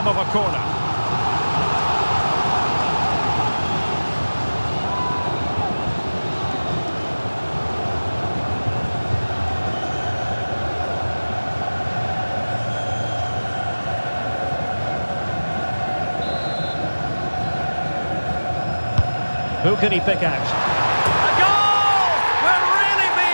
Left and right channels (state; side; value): inverted; both; correlation -1.00